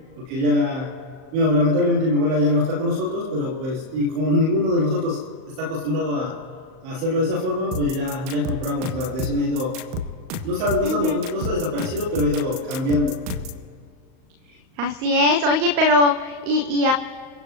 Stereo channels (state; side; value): late; left; 38 ms